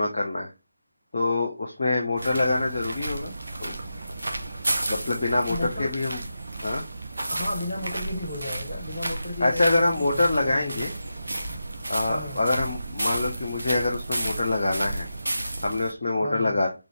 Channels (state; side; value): inverted; both; correlation -0.90